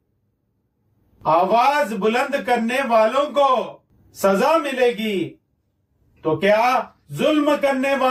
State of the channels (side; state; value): both; identical; correlation 1.00